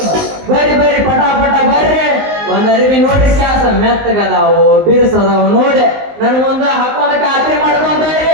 ಬರ್ರಿ ಬರ್ರಿ ಪಟ ಪಟ ಬರ್ರಿ. ಒಂದ್ ಅರಿವಿ ನೋಡ್ರಿ ಕ್ಯಾಸ ಮೆತ್ತಗದಾವು ಬಿರ್ಸದಾವು ನೋಡಿ ನನ್ಗೊಂದು ಹಾಕೊಂಡ ಖಾತ್ರಿ ಮಾಡ್ಕೊಂಡ್ರಿ.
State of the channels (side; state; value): left; late; 19 ms